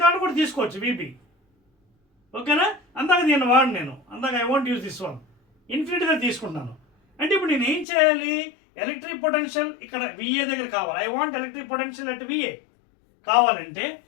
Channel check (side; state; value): right; drops out; at 7.9 s